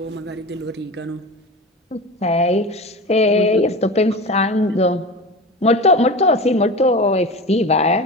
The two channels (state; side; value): normal; both; correlation 0.30